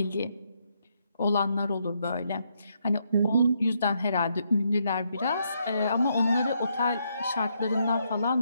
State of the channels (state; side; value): inverted; both; correlation -0.77